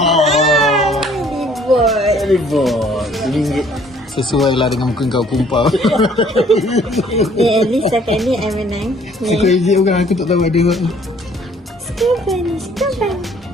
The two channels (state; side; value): normal; both; correlation 0.58